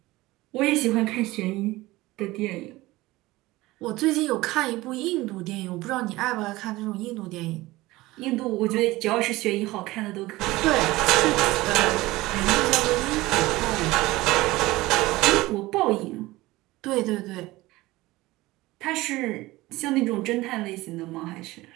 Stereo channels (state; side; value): quieter; left; 19.2 dB